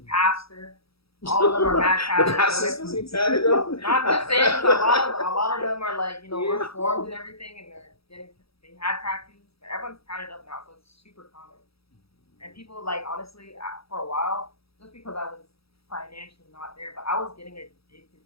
pastor. All of them are mad the tatted. pastor's supposed to be tatted up? No, I'm just saying, 'cause a lot of them are like, reformed and everything, and they had tattoos, but everyone's tatted up now, so it's super common. And people like, honestly, for a while, just because I was financially not there, but I was getting addicted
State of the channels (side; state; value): right; late; 0.77 ms